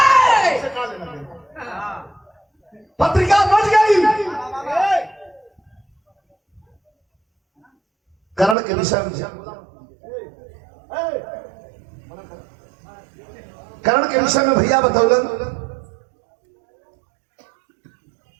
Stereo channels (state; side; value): drops out; left; at 8.6 s